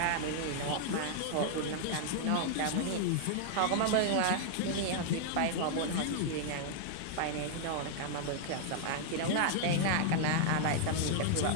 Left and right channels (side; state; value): both; different; correlation -0.01